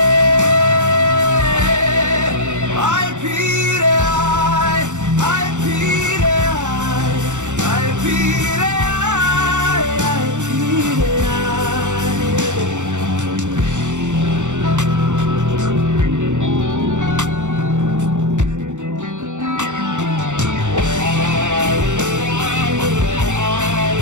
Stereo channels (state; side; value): late; left; 0.85 ms